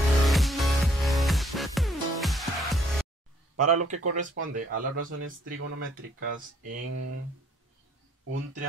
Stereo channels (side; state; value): both; normal; correlation 0.64